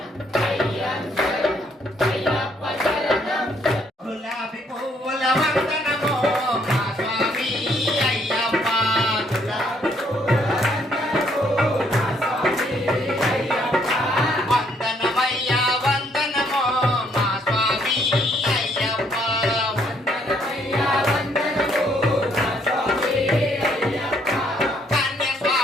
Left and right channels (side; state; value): both; normal; correlation 0.69